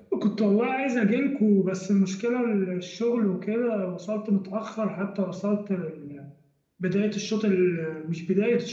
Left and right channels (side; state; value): both; identical; correlation 1.00